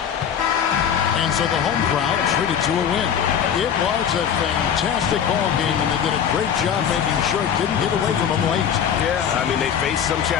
And so the home crowd treated to a win. It was a fantastic ball game, and they did a great job making sure it didn't get away from them late. Yeah, I mean, they faced some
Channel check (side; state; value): right; quieter; 8.3 dB